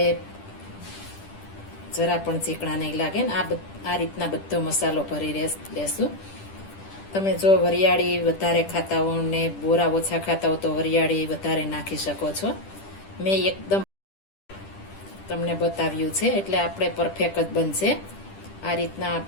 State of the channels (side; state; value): right; late; 10 ms